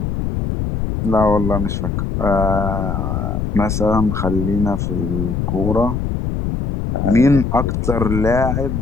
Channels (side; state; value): left; noise; rumble, 2 dB below the sound